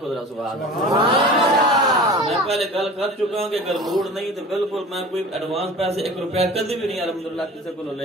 میں پہلے گل کر چکا ہوں کہ اگر موڈ نہیں تو بالکل میں کوئی ایڈوانس پیسے 1 روپیہ کدی بھی نہیں الحمدللہ کسی کو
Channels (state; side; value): normal; both; correlation 0.39